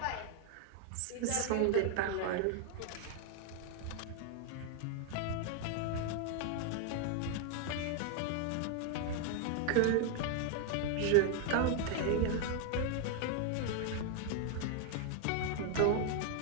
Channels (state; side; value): different; both; correlation 0.00